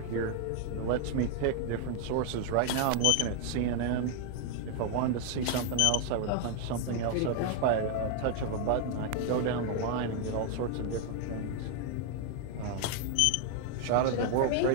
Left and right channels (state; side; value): different; both; correlation 0.00